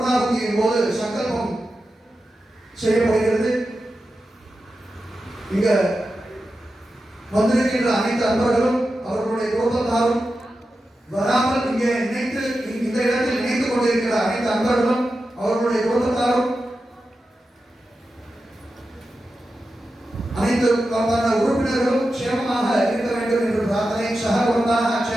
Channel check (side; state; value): both; normal; correlation 0.91